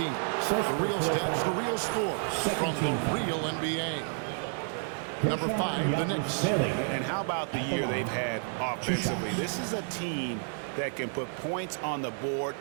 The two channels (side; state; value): left; silent; 58 dB below the other